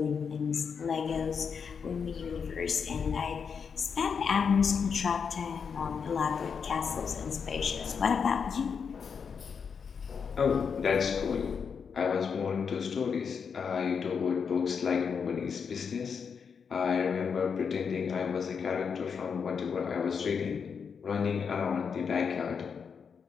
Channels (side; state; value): right; quieter; 6.3 dB